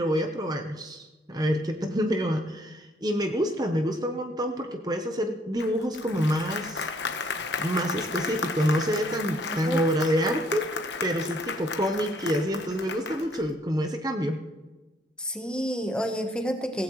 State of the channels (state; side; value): normal; both; correlation 0.65